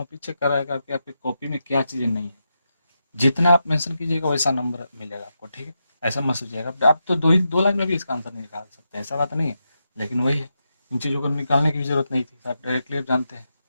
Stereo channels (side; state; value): both; inverted; correlation -0.86